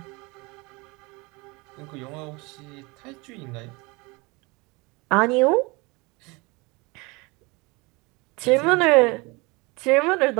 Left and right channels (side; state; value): left; quieter; 25.9 dB